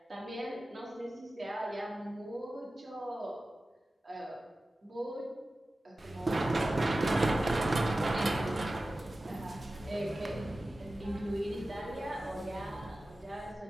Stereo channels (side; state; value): both; normal; correlation 0.95